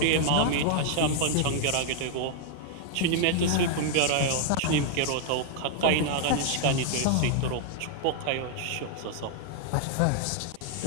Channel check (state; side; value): different; both; correlation 0.00